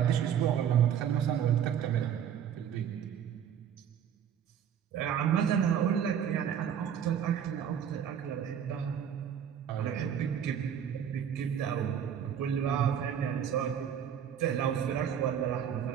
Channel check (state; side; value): quieter; left; 8.8 dB